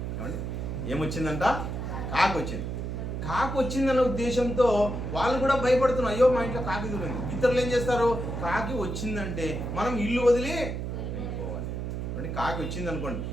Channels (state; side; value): noise; right; hum, 4 dB below the sound